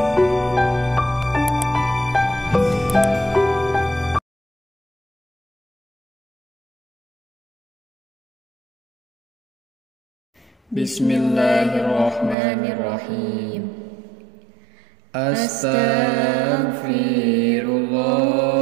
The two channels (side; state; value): left; drops out; at 12.4 s